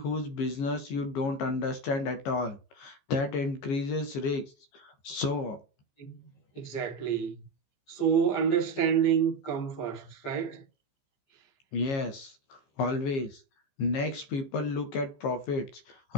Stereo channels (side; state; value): right; late; 15 ms